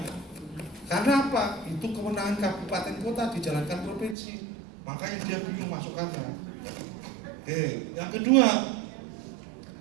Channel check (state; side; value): drops out; left; at 4.2 s